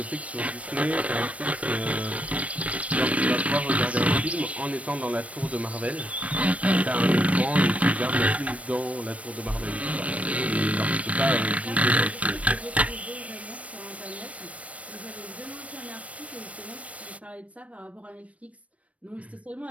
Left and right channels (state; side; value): late; left; 0.065 ms